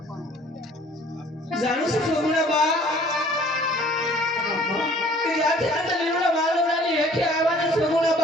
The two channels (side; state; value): both; normal; correlation 0.53